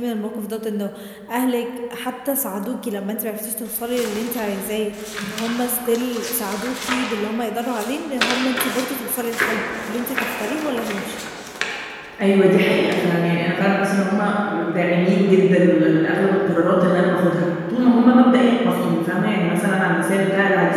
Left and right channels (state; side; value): identical; both; correlation 1.00